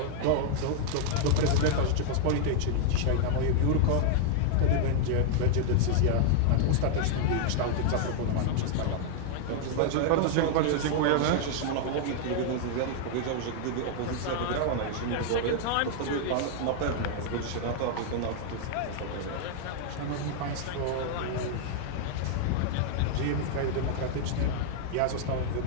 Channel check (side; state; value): both; different; correlation 0.00